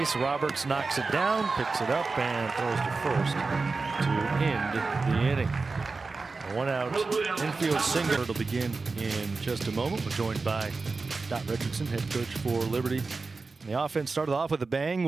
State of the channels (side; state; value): left; quieter; 4.0 dB